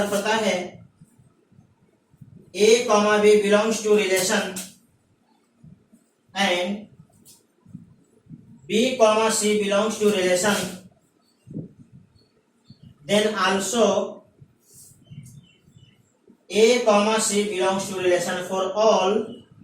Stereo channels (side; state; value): both; identical; correlation 1.00